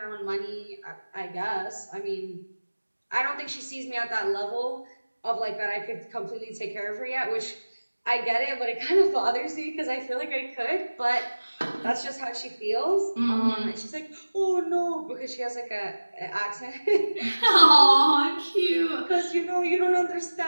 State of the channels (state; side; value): inverted; both; correlation -1.00